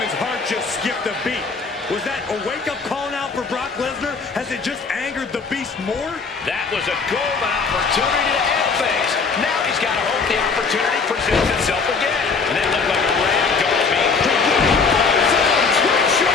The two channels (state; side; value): quieter; right; 4.9 dB